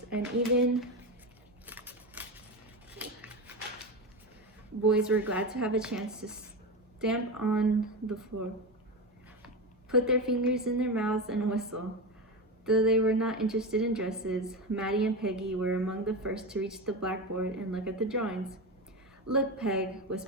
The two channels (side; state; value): both; normal; correlation 0.19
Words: and even boys were glad to have a chance to stamp on the floor, put their fingers in their mouths, and whistle. Though they were not interested in dresses, Maddie and Peggy were among the first to reach the blackboard and look at the drawings. Look, Peg,